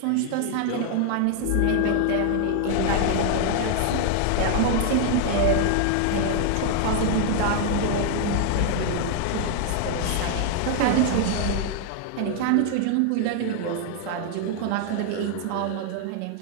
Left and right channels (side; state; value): both; different; correlation 0.00